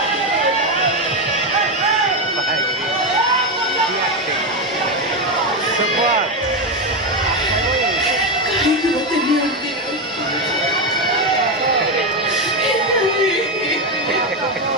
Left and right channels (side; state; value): both; normal; correlation 0.11